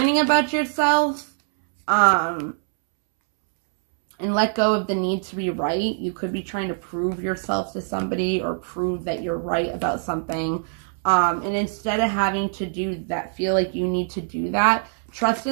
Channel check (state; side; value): silent; left; 63 dB below the other